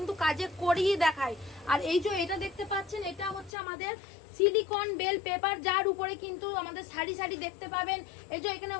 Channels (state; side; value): drops out; right; at 3.5 s